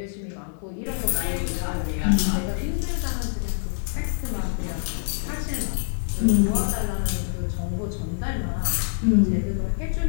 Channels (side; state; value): right; silent; digital silence